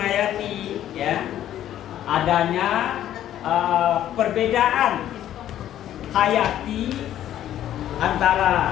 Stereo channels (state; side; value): quieter; right; 11.8 dB